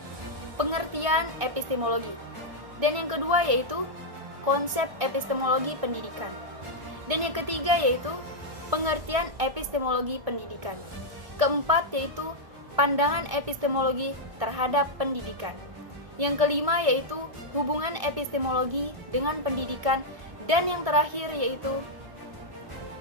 pengertian epistemologi. Dan yang kedua yaitu konsep epistemologi pendidikan. Dan yang ketiga yaitu pengertian epistemologi pendidikan. Keempat yaitu pandangan epistemologi terhadap pendidikan. Yang kelima yaitu hubungan epistemologi dengan pendidikan. Dan yang terakhir yaitu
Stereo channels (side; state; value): left; late; 2.0 ms